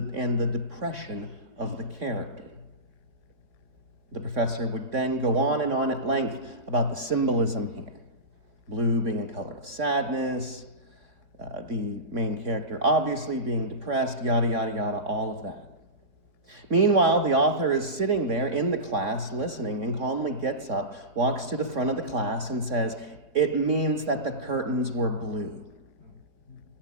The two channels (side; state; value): left; late; 3.6 ms